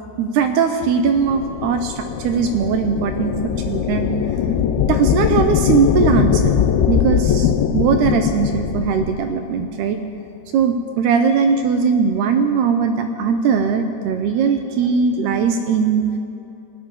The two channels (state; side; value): late; left; 13 ms